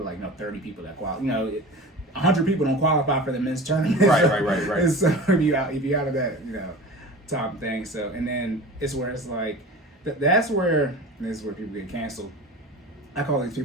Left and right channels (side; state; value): both; normal; correlation 0.36